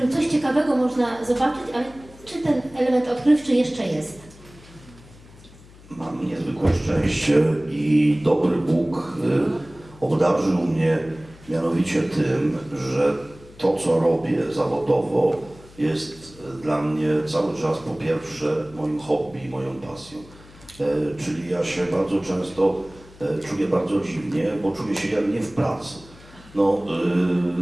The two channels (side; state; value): left; noise; hum, 22 dB below the sound